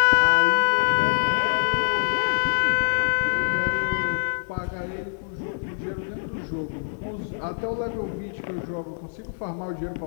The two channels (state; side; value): silent; right; digital silence